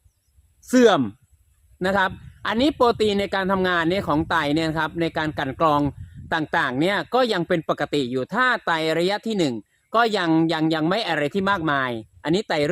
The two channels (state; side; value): identical; both; correlation 1.00